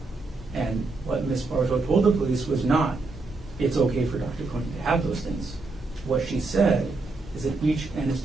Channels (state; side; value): quieter; left; 3.5 dB